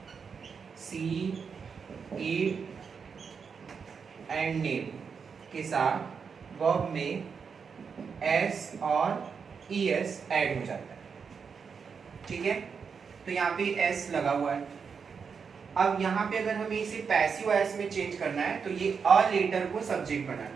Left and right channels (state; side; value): quieter; left; 6.0 dB